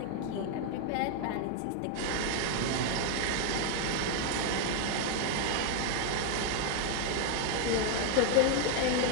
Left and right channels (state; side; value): different; both; correlation 0.00